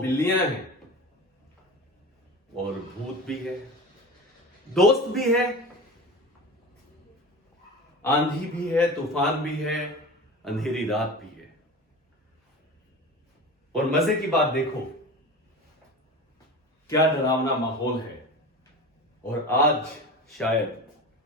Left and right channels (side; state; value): both; normal; correlation 0.32